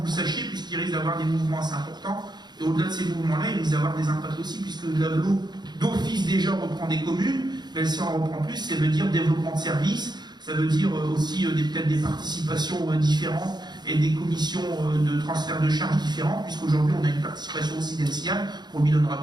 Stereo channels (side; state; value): left; late; 0.21 ms